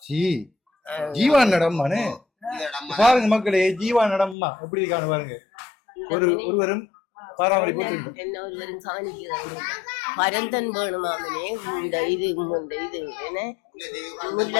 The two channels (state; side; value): drops out; right; at 4.4 s